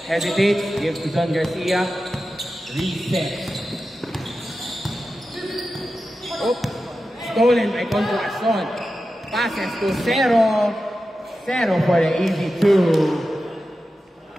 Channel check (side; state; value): both; normal; correlation 0.92